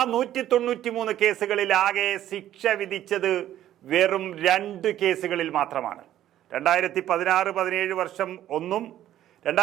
193 കേസുകളിൽ ആകെ ശിക്ഷ വിധിച്ചത് വെറും 2 കേസുകളിൽ മാത്രമാണ്. 2016-17 വർഷം ഒന്നും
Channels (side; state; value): left; quieter; 12.3 dB